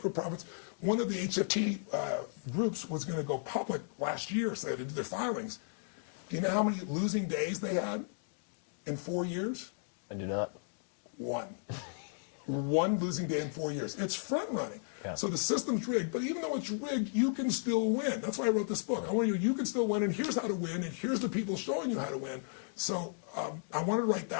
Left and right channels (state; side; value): silent; right; digital silence